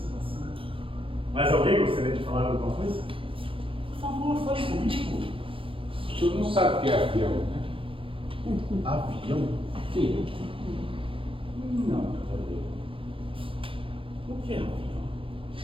Mais alguém gostaria de falar alguma coisa? Por favor, fale comigo. O senhor não sabe o que é avião, né? Avião? Sim. Não, cavaleiro. O que é avião?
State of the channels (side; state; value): left; late; 0.25 ms